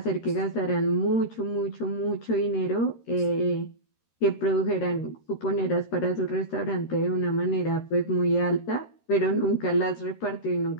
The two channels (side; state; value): right; late; 13 ms